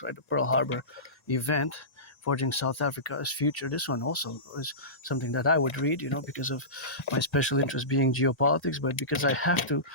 right? The Pearl Harbor event, Forging South Africa's Future. This one also is something that I would read, because of my special interest being geopolitics, but because I have to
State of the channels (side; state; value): right; late; 1.9 ms